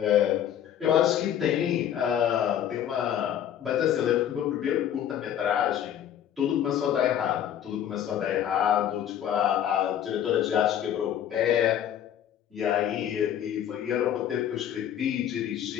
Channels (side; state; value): right; quieter; 10.1 dB